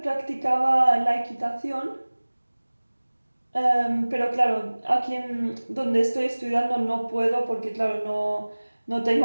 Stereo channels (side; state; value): both; inverted; correlation -1.00